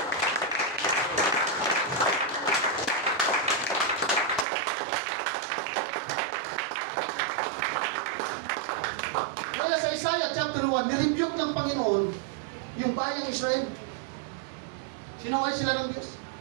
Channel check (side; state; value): left; drops out; at 4.5 s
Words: Kaya sa Isaiah chapter 1, nirebuke ng Panginoon yung bayang Israel. Sinaway sila ng Diyos.